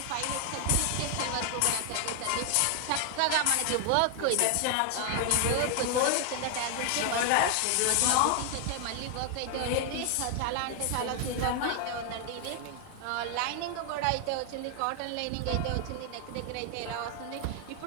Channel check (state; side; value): different; both; correlation 0.00